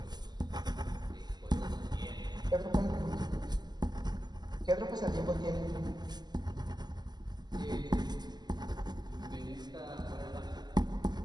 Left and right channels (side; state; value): left; late; 0.20 ms